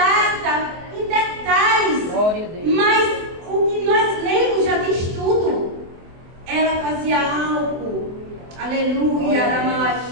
em detalhes, Glória a Deus. mas o que nós lemos já de estudo, ela fazia algo. Aleluia,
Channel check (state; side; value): late; left; 24 ms